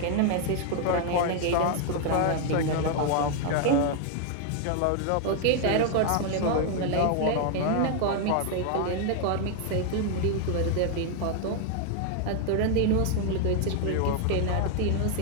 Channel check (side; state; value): both; different; correlation 0.00